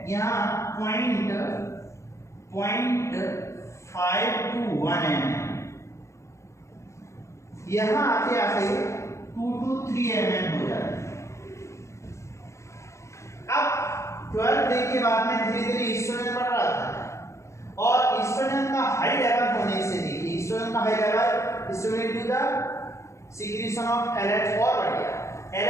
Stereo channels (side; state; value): right; late; 0.14 ms